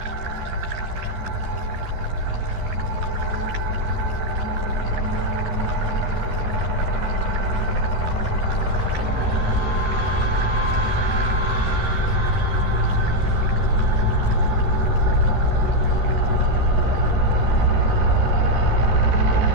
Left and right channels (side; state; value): left; late; 12 ms